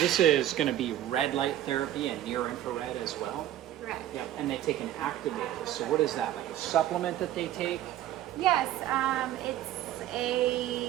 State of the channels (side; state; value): left; quieter; 12.6 dB